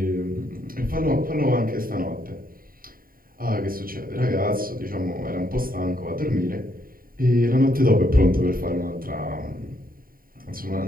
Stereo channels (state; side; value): late; left; 0.42 ms